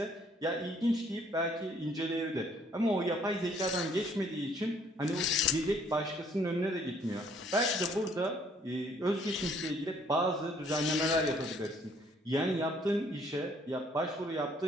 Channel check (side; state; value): both; normal; correlation 0.63